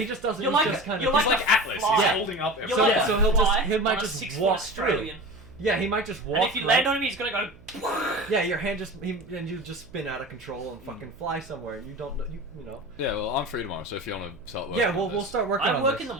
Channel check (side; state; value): right; noise; hum, 24 dB below the sound